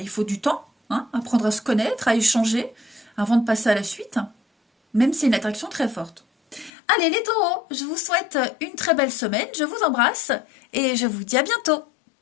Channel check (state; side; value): drops out; right; at 6.7 s